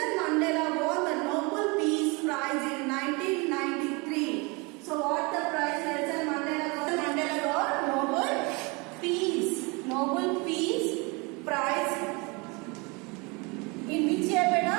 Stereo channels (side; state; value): left; quieter; 28.5 dB